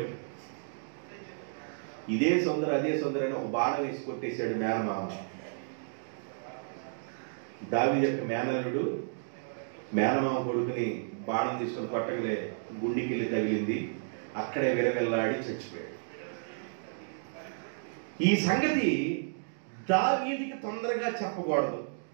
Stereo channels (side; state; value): left; silent; digital silence